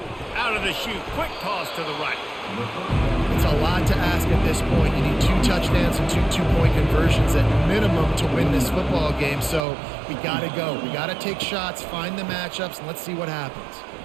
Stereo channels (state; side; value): drops out; left; at 9.6 s